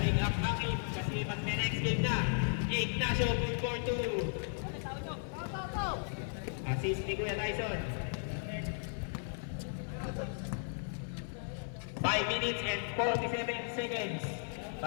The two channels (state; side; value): silent; right; 54 dB below the other